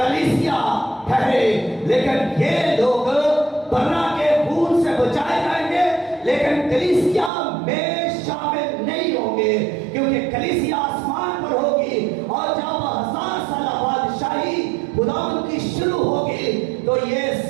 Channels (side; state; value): left; drops out; at 7.3 s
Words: ٹھہرے، لیکن یہ لوگ برنا کے خون سے بچائے جائیں گے لیکن کلیسیا میں شامل نہیں ہوں گے، کیونکہ کلیسیا آسمان پر ہوگی اور جب 1000 سالہ بادشاہی خداوند کی شروع ہوگی تو یہ